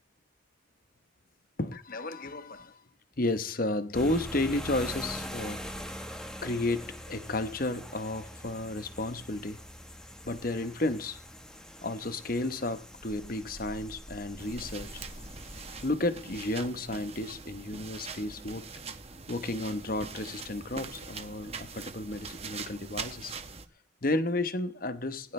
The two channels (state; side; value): normal; both; correlation 0.42